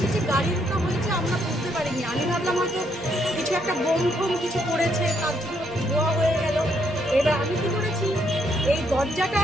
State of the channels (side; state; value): both; normal; correlation 0.73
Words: গাড়ি ঢোকা হয়েছে, আমরা বুঝতে পারিনি। আমি ভাবলাম হয়তো কিছু একটা বোম ফোম কিছু করেছে, তার জন্য ধোয়া হয়ে গেল। এবার আমি কি করেছি, এই দরজাটা